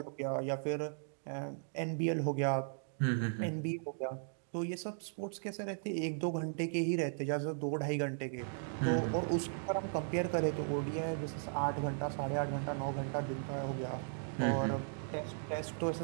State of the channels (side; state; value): left; silent; digital silence